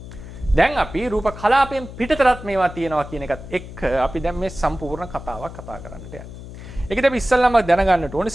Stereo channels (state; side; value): noise; left; hum, 13 dB below the sound